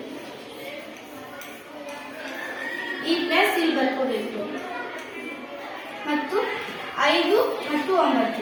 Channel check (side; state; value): both; identical; correlation 1.00